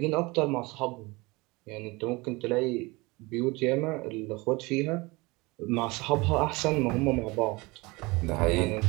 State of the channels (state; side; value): quieter; left; 24.1 dB